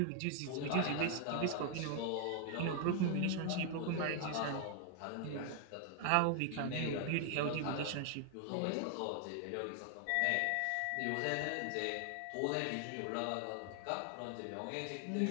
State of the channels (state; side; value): different; both; correlation 0.00